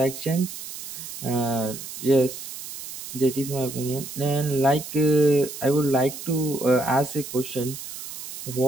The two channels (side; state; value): right; noise; hiss, 11 dB below the sound